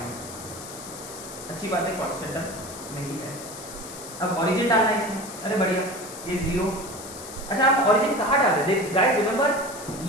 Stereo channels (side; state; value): left; noise; hiss, 13 dB below the sound